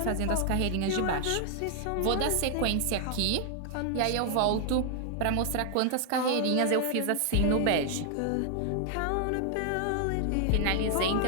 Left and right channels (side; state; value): both; different; correlation 0.00